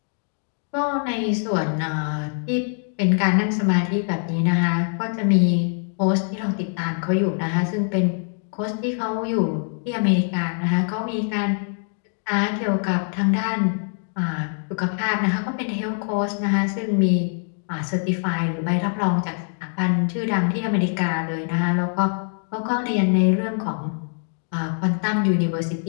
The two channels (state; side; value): silent; right; 57 dB below the other